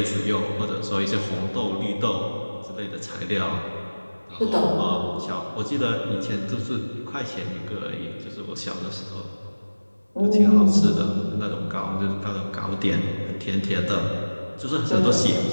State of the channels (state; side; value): inverted; both; correlation -1.00